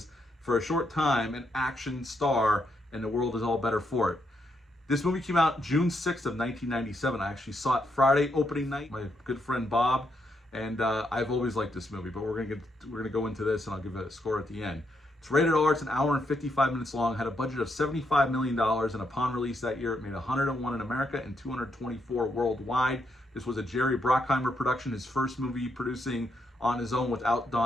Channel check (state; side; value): normal; both; correlation 0.78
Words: for a short time, an action star, and the world is all better for it. This movie came out June 6th of 1997. I actually saw it Friday opening night. My good friend Bob, and I've always liked this movie, but we're gonna go into this, and I'll give it a score at the end. It's rated R. It's an hour and 55 minutes long. Had a budget of $75 million, and upon release that year, it made 101 in America and 224 worldwide. This was a Jerry Bruckheimer production, his first movie producing on his own without